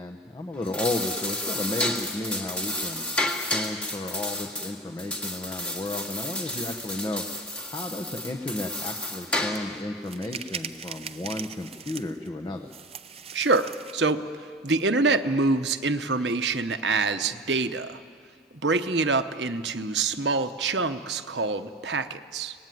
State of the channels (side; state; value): both; normal; correlation 0.32